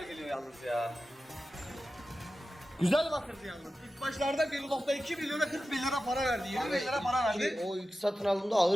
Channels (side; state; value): both; normal; correlation 0.93